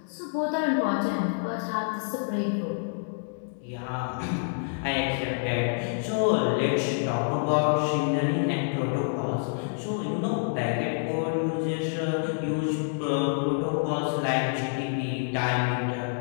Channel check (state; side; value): silent; right; digital silence